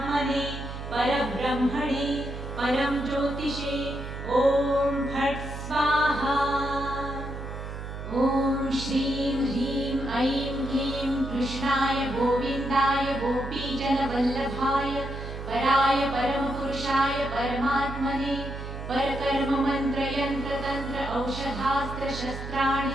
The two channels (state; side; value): noise; right; hum, 8 dB below the sound